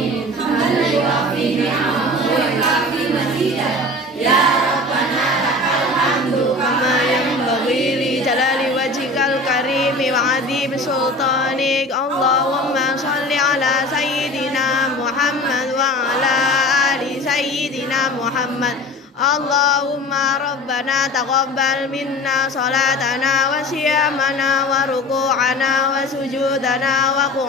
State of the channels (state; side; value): normal; both; correlation 0.38